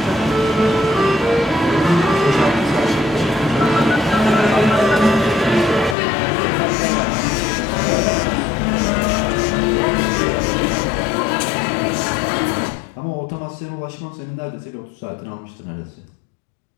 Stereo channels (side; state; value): right; drops out; at 6.0 s